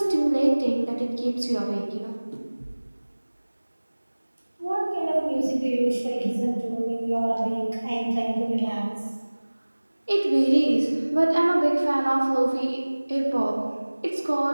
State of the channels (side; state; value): both; inverted; correlation -1.00